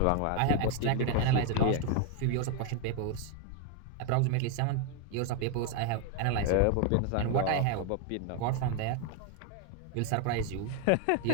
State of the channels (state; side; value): different; both; correlation 0.01